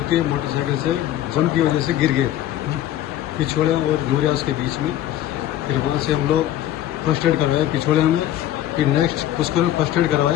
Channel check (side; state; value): right; quieter; 12.5 dB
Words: के मोटरसाइकिल से जंप की वजह से गिर गए पिछोड़े और यूरियास के बीच में। फिर वहाँ से हम लोग फर्स्ट एड करवाया पिछोड़े में, फिर नेक्स्ट पुष्कर में फर्स्ट एड